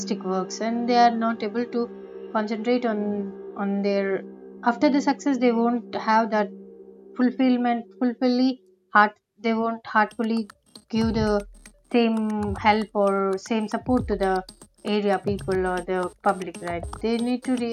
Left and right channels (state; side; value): identical; both; correlation 1.00